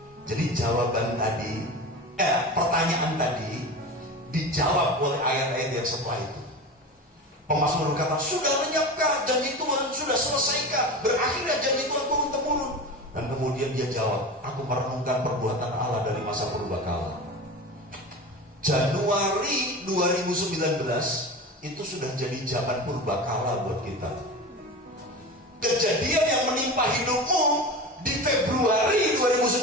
Jadi jawaban tadi, pertanyaan tadi dijawab oleh ayat-ayat yang setelah itu. Pemazmur berkata, sudah lenyapkah janji Tuhan? Sudah selesaikah? Berakhirnya janji Tuhan turun-temurun? Dan kemudian dia jawab, aku merenungkan perbuatan Allah dari masa purbakala. Januari 2019 itu sudah jadi zaman purbakala buat kita. Kejadian yang menimpa hidupmu di Februari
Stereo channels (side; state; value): both; normal; correlation 0.29